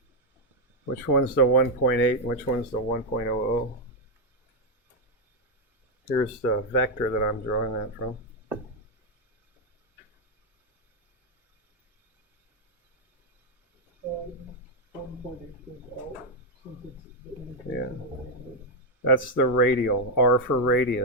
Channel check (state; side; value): normal; both; correlation 0.00